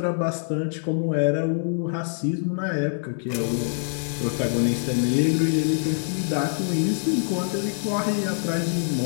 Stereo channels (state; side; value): silent; right; 62 dB below the other